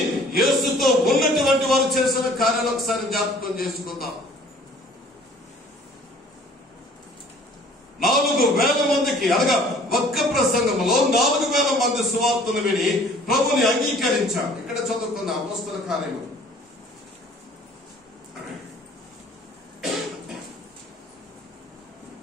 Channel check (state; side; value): normal; both; correlation 0.53